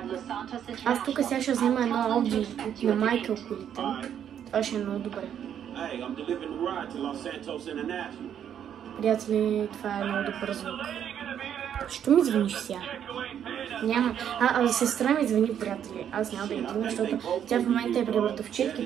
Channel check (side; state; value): left; quieter; 9.3 dB